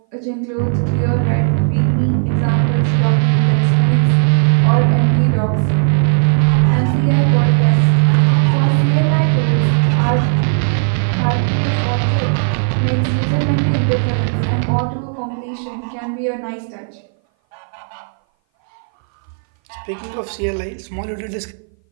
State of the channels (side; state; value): left; silent; 59 dB below the other